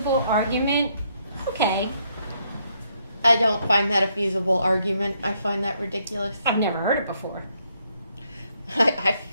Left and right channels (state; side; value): inverted; both; correlation -0.73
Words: argument, okay. I don't find that a feasible argument. I find that ridiculous. I've never heard it before.